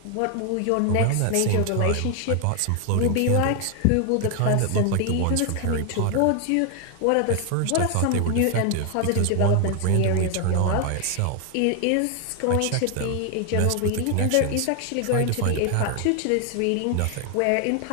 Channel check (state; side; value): different; both; correlation 0.01